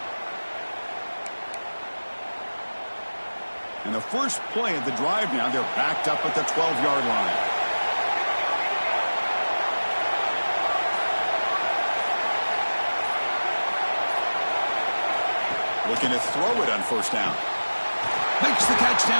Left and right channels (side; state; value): both; inverted; correlation -1.00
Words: And the first play of the drive now, they're backed up at the 12-yard line. Looking to throw it on first down. Makes the catch